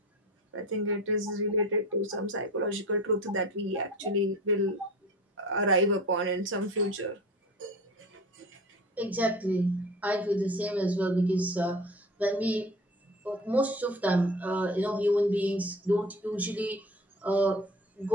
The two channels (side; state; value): both; normal; correlation 0.39